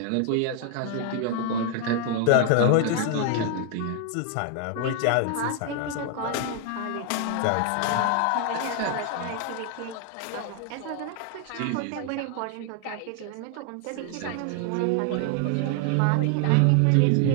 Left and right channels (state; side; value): different; both; correlation 0.00